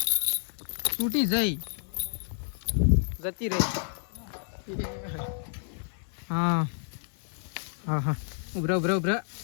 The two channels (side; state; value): right; silent; 56 dB below the other